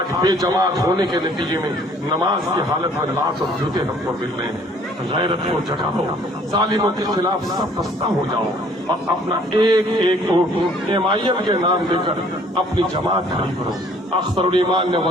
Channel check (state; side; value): normal; both; correlation 0.58